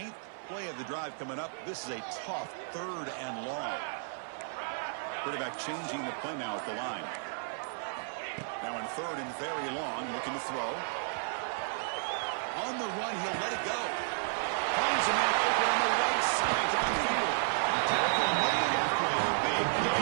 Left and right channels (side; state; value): left; silent; 56 dB below the other